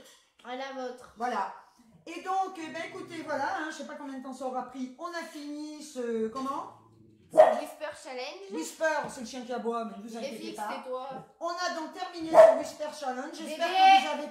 À la vôtre. Voilà. Et donc, eh ben, écoutez, voilà, hein, je sais pas combien de temps ça aura pris. On a fini ce. Comment? Whisper Challenge. Whisper, c'est le chien qui aboie, mais ne vous Et inquiétez fixe, pas. c'est toi. On a donc terminé ce Whisper Challenge. J'espère Bébé. que vous avez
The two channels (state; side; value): identical; both; correlation 1.00